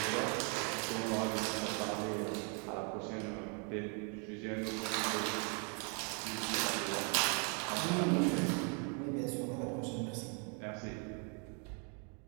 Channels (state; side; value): quieter; left; 37.9 dB